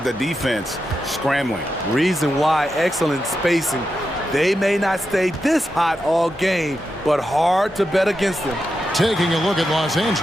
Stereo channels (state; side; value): normal; both; correlation 0.88